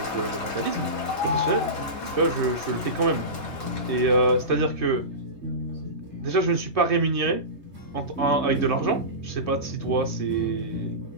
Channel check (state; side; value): late; right; 3.2 ms